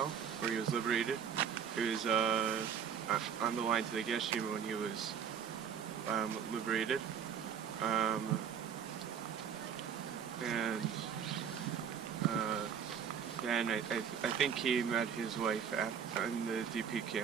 where he was liberated. He was on the line to the Geshim when he was liberated. Then I think he met his wife in the DP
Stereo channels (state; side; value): quieter; left; 7.6 dB